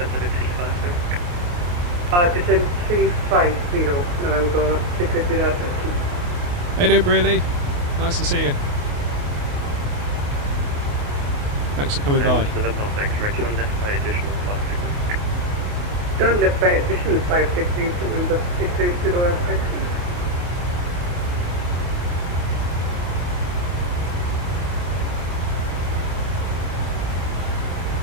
level 350. Descent 350, November 680 Alpha X-ray. Hey doing, Brearley? Nice to see you. Thanks for coming by. And November Alpha X-ray, turn left by additional 5 degrees. Turn left by additional 5 degrees, November 680 Alpha X-ray.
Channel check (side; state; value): left; late; 28 ms